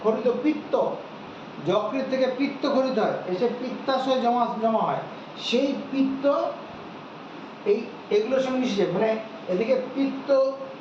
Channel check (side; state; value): both; identical; correlation 1.00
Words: খরিত যকৃৎ থেকে পিত্ত খরিত হয়, এসে পিত্তাশয় জমা হয়। সেই পিত্ত এগুলোর সঙ্গে মিশে, মানে এদিকে পিত্ত